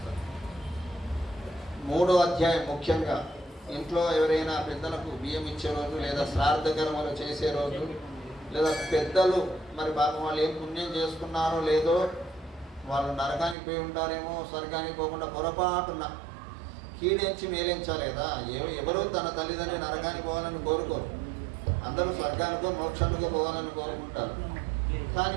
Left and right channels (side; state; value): left; drops out; at 13.6 s